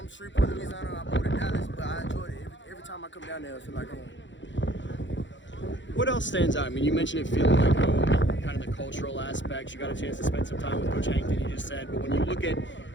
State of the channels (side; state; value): right; late; 0.54 ms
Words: Shreveport, Louisiana. I moved to Dallas, but I enjoyed it. Every time I come down there, I feel like home. What else stands out? I mean, you mentioned it feeling like home, kind of the cultural aspects. You got a chance to spend some time with Coach Hankton, you just said. But when you look at